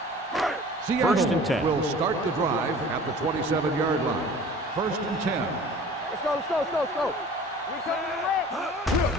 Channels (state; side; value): normal; both; correlation 0.45